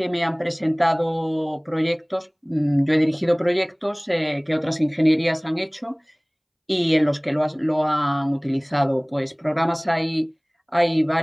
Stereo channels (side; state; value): both; identical; correlation 1.00